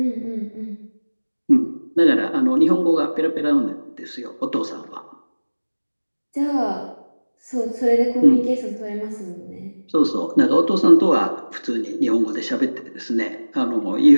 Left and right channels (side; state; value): both; inverted; correlation -1.00